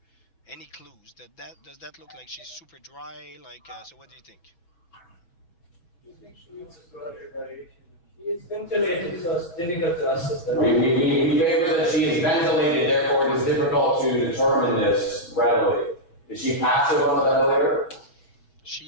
any clues, does that look like she's super dry? Like, so what do you think? It's ventilated, so it's difficult to assess that. We favor that she is ventilated, therefore it is difficult to determine this readily. Is she passive on the ventilator?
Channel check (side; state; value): right; late; 6.0 ms